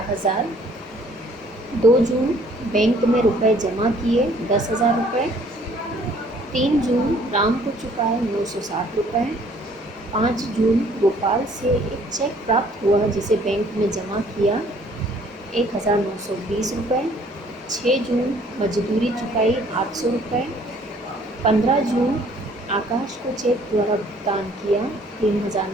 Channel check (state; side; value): normal; both; correlation 0.59